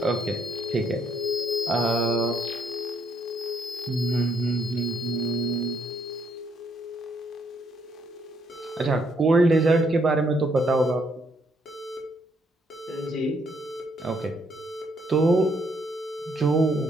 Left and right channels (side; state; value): both; normal; correlation 0.72